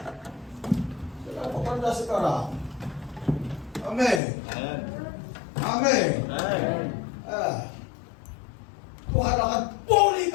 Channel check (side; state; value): right; drops out; at 4.2 s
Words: Apa pada sekarang? Amin. Amin. Tuhan akan